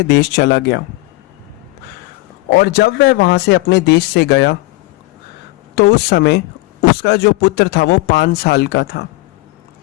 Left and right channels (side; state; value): right; quieter; 20.7 dB